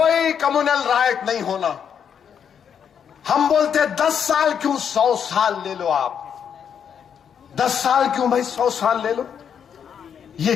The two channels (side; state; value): right; quieter; 7.8 dB